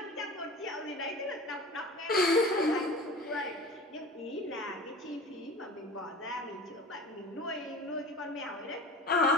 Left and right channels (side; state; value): both; normal; correlation 0.38